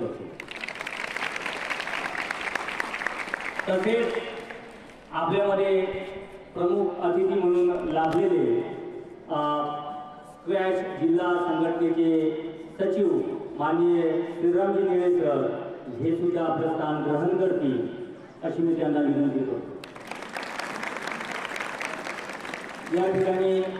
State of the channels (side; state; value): both; identical; correlation 1.00